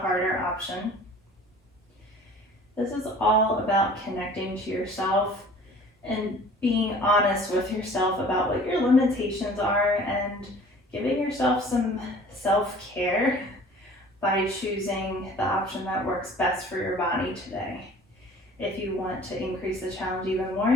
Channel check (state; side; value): normal; both; correlation 0.48